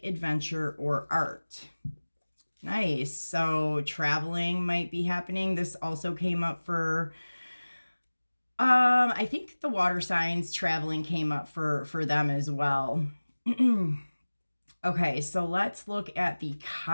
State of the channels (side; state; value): both; inverted; correlation -1.00